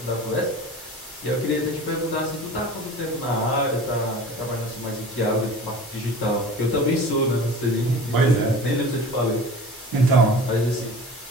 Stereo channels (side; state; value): both; normal; correlation 0.39